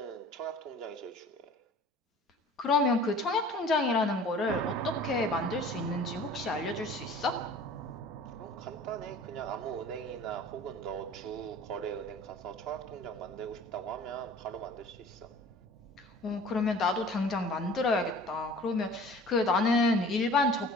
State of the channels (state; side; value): normal; both; correlation 0.45